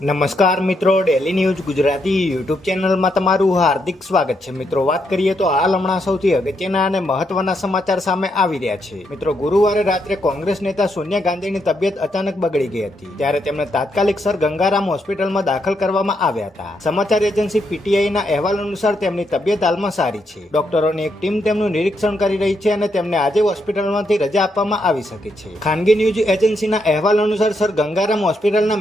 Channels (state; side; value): normal; both; correlation 0.79